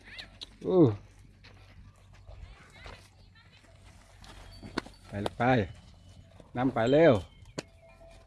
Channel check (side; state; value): both; identical; correlation 1.00